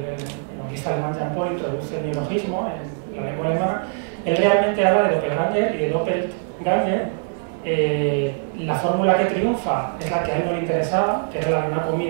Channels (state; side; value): silent; left; digital silence